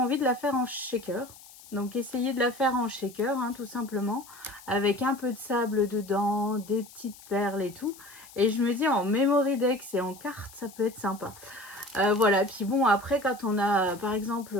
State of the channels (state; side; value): noise; left; hiss, 20 dB below the sound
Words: de la faire en shaker. Donc, essayez de la faire en shaker, hein, tout simplement. Avec un peu de sable dedans, des petites perles et tout. Et je me dis, en memory dex et en carte, ça peut être sympa. Voilà. Puis bon, après, quand on a, par exemple,